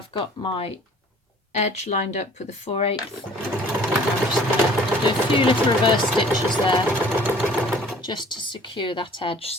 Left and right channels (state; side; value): normal; both; correlation 0.52